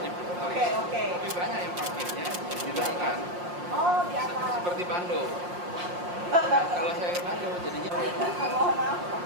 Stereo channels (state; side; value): late; left; 5.6 ms